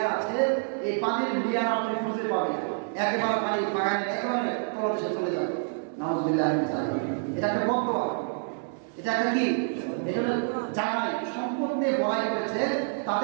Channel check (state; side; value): silent; left; digital silence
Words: আছে, এই পানির লেয়ার আপনি খুঁজে পাবেন, একেবারে পানি বাগানের একেবারে তলদেশে চলে যাবে। নাউযুবিল্লাহ। এটা একটা বদদোয়া, এটা একটা কি, এটা জানাই সম্পদ নিয়ে বড়াই করেছে,